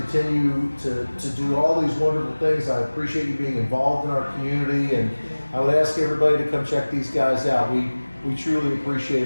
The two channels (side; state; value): both; inverted; correlation -1.00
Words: to do all these wonderful things. I appreciate you being involved in our community, and I would ask everybody to come check these guys out. We truly appreciate